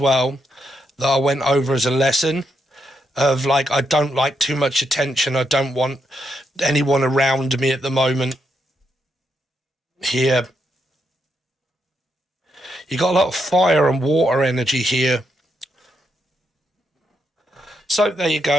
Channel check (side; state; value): both; normal; correlation 0.80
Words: that I went over as a lesson of, like, I don't like too much attention. I don't want anyone around me at the moment. Here. You got a lot of fire and water energy here. So there you